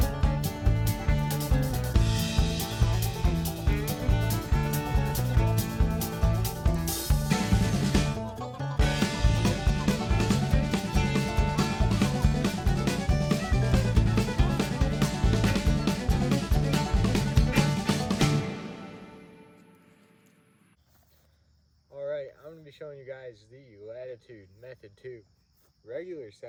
Alright, I'm going to be showing you guys the Latitude Method 2 regular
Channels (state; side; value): identical; both; correlation 1.00